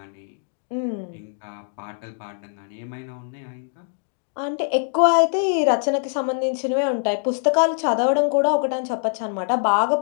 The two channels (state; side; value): silent; right; digital silence